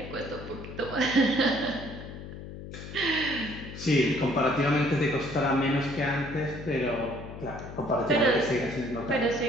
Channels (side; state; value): left; noise; hum, 11 dB below the sound